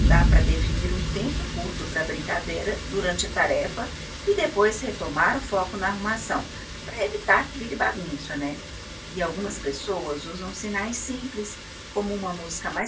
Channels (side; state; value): both; identical; correlation 1.00